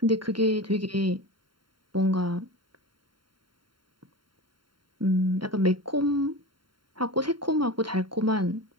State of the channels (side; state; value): left; late; 0.72 ms